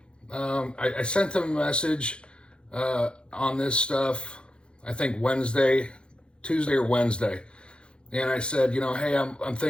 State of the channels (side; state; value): right; late; 0.055 ms